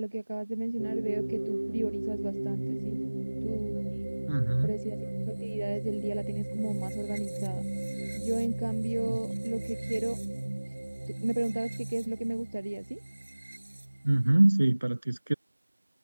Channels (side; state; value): both; inverted; correlation -1.00